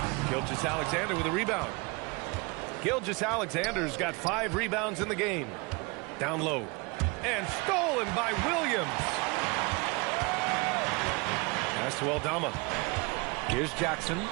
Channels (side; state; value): left; quieter; 27.9 dB